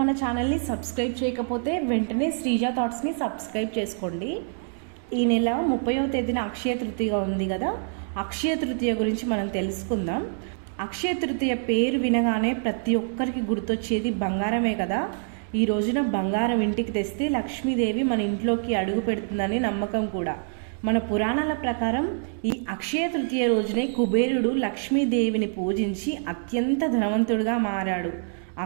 ఛానల్ని సబ్స్క్రైబ్ చేయకపోతే వెంటనే శ్రీజ థాట్స్ని సబ్స్క్రైబ్ చేసుకోండి. ఈ నెల 30వ తేదీన అక్షయ తృతీయ ఉంది కదా, అక్షయ తృతీయ గురించి మనం తెలుసుకుందాం. అక్షయ తృతీయ పేరు వినగానే ప్రతి ఒక్కరికి గుర్తొచ్చేది బంగారమే కదా. ఈ రోజున బంగారం ఇంటికి తెస్తే లక్ష్మీదేవి మన ఇంట్లోకి అడుగు పెడుతుందని నమ్మకం కూడా. మన పురాణాల ప్రకారం ఈ అక్షయ తృతీయ రోజునే కుబేరుడు లక్ష్మీదేవిని పూజించి అత్యంత ధనవంతుడిగా మారాడు.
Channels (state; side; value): silent; left; digital silence